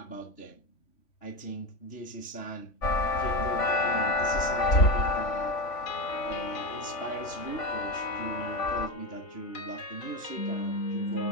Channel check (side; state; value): right; late; 3.5 ms